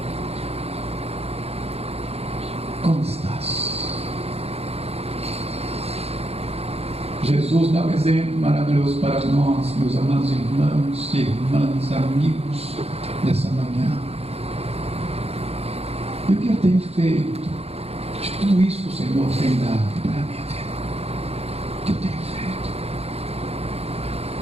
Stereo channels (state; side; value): late; left; 0.29 ms